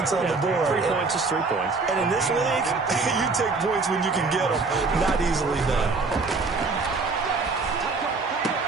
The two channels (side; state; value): left; quieter; 4.1 dB